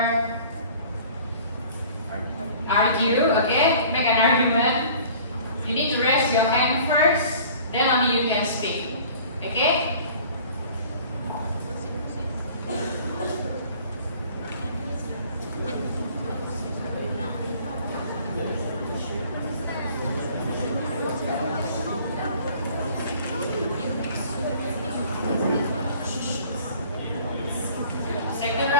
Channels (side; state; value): both; inverted; correlation -0.49